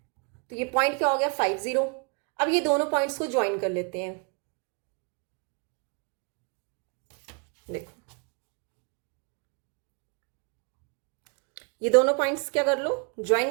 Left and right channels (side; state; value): left; quieter; 35.8 dB